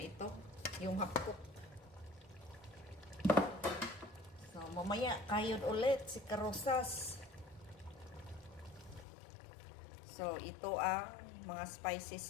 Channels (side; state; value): right; drops out; at 9.1 s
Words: ito. Yung half-cook. So, mamaya, kayod ulit si Karosas. So, ito ang mga